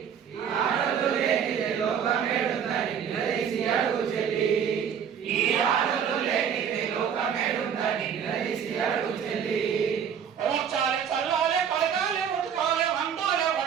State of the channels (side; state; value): left; quieter; 7.9 dB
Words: ఆడలు లేనిదే లోకమేడుందని నిలదీసి అడుగు చెల్లి. ఈ ఆడలు లేనిదే లోకమేడుందని నిలదీసి అడుగు చెల్లి. ఊర్చాలే చల్లాలే కడగాలే ఉతకాలే వండాలే